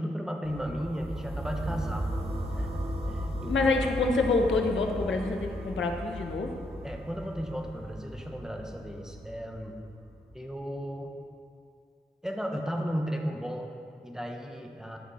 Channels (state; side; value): normal; both; correlation 0.77